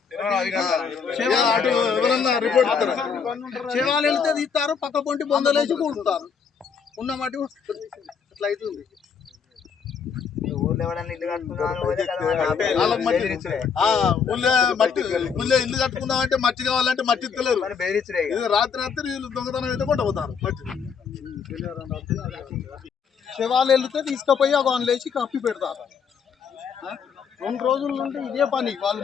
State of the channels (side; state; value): right; quieter; 6.4 dB